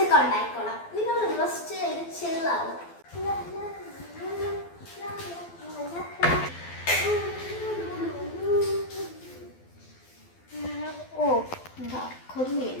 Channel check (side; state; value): right; late; 12 ms